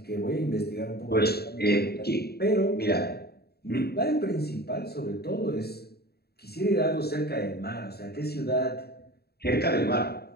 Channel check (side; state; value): right; late; 0.46 ms